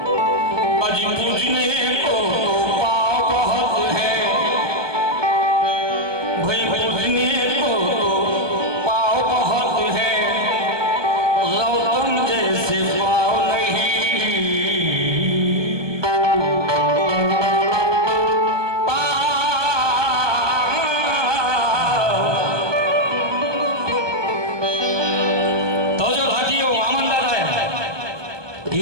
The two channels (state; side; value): late; left; 1.2 ms